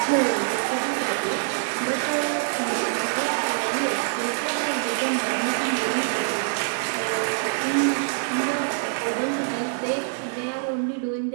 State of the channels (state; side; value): silent; left; 62 dB below the other